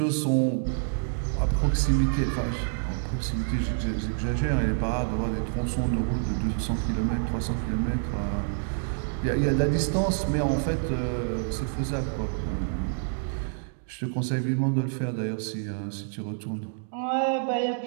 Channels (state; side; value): silent; left; digital silence